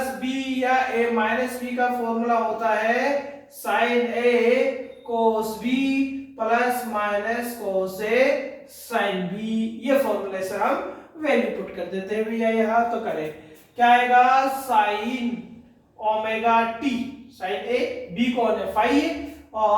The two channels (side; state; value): both; identical; correlation 1.00